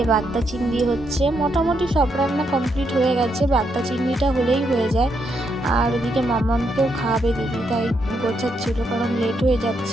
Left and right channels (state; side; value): normal; both; correlation 0.79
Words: বাগদা চিংড়ি হচ্ছে, মোটামুটি সব রান্না কমপ্লিট হয়ে গেছে, বাগদা চিংড়িটা হলেই হয়ে যায়। আর ওদিকে মাম্মামকেও খাওয়াবে দিদি, তাই গোছাচ্ছিল, কারণ লেট হয়ে